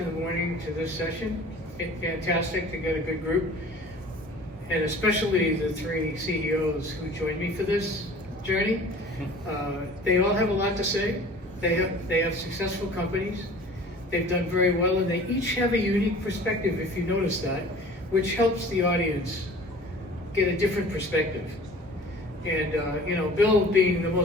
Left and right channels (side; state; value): both; normal; correlation 0.45